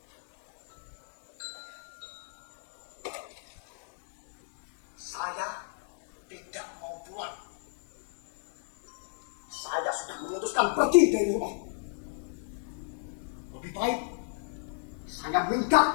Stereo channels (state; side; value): silent; right; digital silence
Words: Saya tidak mau pulang. Saya sudah memutuskan pergi dari rumah. Lebih baik saya minggat